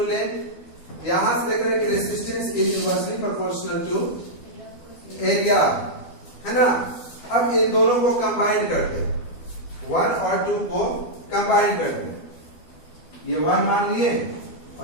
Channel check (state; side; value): late; right; 12 ms